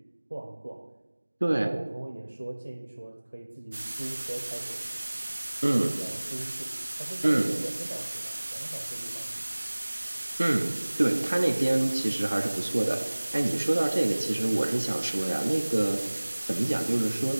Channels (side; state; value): both; inverted; correlation -1.00